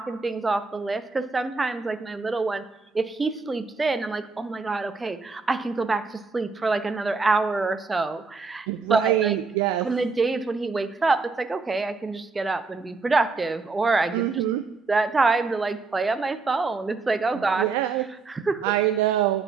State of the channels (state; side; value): quieter; left; 4.4 dB